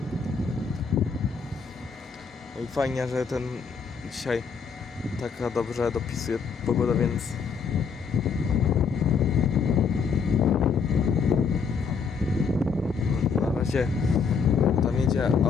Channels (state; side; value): quieter; right; 5.8 dB